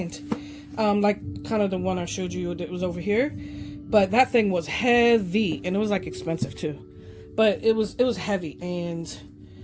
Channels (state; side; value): identical; both; correlation 1.00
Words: like kind of the one I showed you that was over here. But that thing was heavy, and it was like expensive too, but it was heavy, and